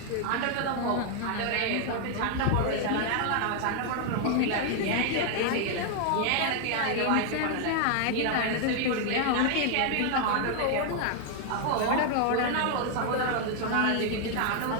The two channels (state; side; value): different; both; correlation 0.00